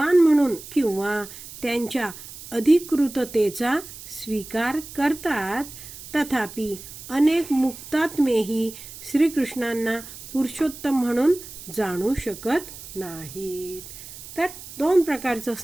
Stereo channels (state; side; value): noise; right; hiss, 14 dB below the sound